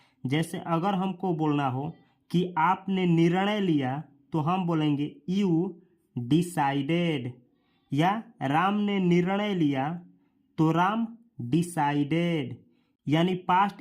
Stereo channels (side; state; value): both; identical; correlation 1.00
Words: जैसे अगर हमको बोलना हो कि आपने निर्णय लिया तो हम बोलेंगे यू डिसाइडेड, या राम ने निर्णय लिया तो राम डिसाइडेड। यानी